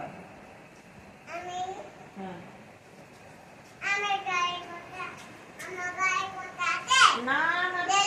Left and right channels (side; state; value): both; identical; correlation 1.00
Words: আমি হ্যাঁ আমার গায়ে করতে আমার গায়ে করতে আছে না না